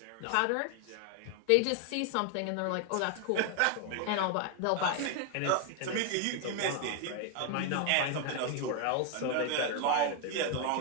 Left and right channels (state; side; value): different; both; correlation 0.01